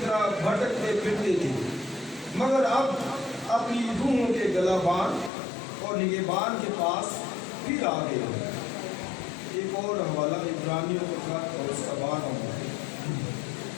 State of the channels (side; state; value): right; drops out; at 5.3 s